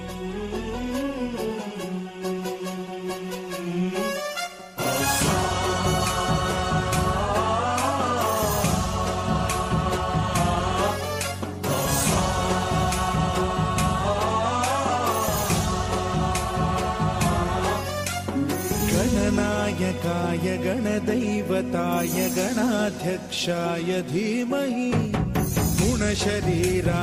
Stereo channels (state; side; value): identical; both; correlation 1.00